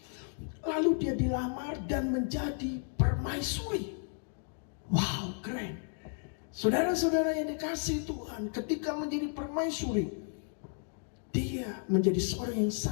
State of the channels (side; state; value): right; silent; 56 dB below the other